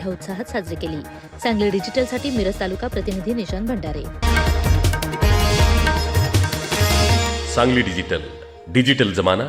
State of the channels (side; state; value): both; identical; correlation 1.00